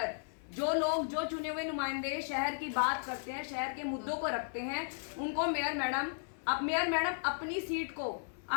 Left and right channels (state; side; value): silent; right; 54 dB below the other